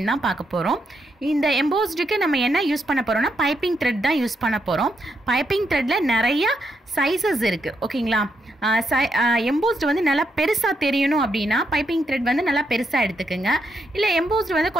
தான் பார்க்க போகிறோம். இந்த எம்போஸ்டுக்கு நம்ம என்ன யூஸ் பண்ண போகிறோம்னா பைப்பிங் த்ரெட் தான் யூஸ் பண்ண போகிறோம். பைப்பிங் த்ரெட்டில் நிறையா சைஸஸ் இருக்குது, ஓகேங்களா. எம்போஸ்டு வந்து நல்லா பெருசாக தெரியணும் அப்படின்னா பைப்பிங் த்ரெட் வந்து நல்லா பெருசாக எடுத்துக்கோங்க. இல்லை எம்போஸ்டு வந்து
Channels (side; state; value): both; normal; correlation 0.80